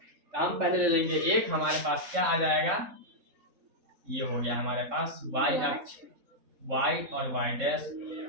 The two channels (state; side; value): late; left; 3.7 ms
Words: हम पहले ले लेंगे एक, हमारे पास क्या आ जाएगा, ये हो गया हमारे पास वाई अक्ष, वाई और वाई डैश,